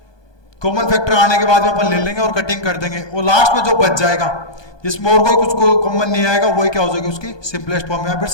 कॉमन फैक्टर आने के बाद में अपन ले लेंगे और कटिंग कर देंगे, और लास्ट में जो बच जाएगा जिसमें और कोई कुछ कॉमन नहीं आएगा वही क्या हो जाएगी, उसकी सिंपलेस्ट फॉर्म या फिर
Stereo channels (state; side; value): late; right; 1.2 ms